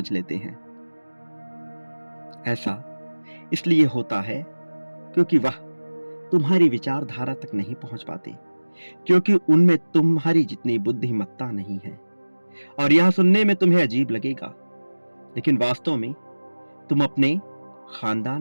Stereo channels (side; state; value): both; inverted; correlation -1.00